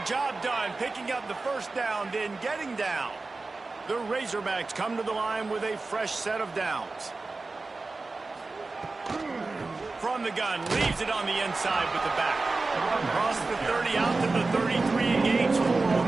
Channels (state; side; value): quieter; left; 3.6 dB